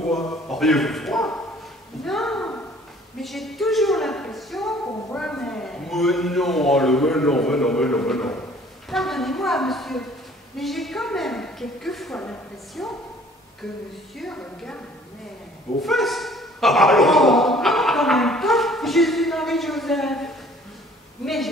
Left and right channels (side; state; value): both; normal; correlation 0.54